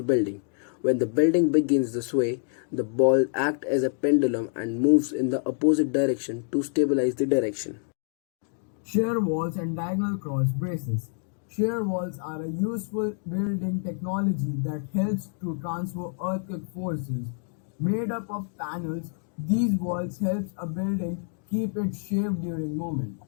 building. When the building begins to sway, the ball acts as a pendulum and moves in the opposite direction to stabilize the direction. Shear walls and diagonal cross braces. Shear walls are a useful building technology that helps to transfer earthquake forces. Made up of panels, these walls help a building keep its shape during movement.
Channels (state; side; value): silent; right; 60 dB below the other